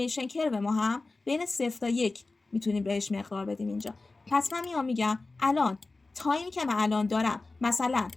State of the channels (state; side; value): quieter; right; 3.4 dB